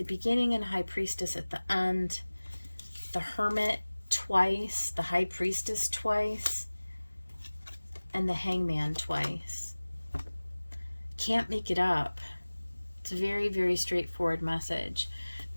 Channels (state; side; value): inverted; both; correlation -1.00